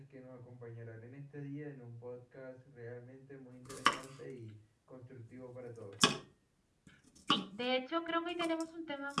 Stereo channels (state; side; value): identical; both; correlation 1.00